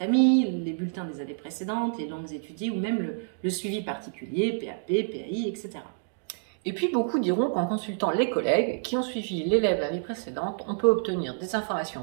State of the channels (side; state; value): left; silent; digital silence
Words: les bulletins des années précédentes, les langues étudiées ou même le suivi particulier, PAP, PAI, etc. Et puis beaucoup diront qu'en consultant les collègues qui ont suivi l'élève l'année précédente, on peut obtenir des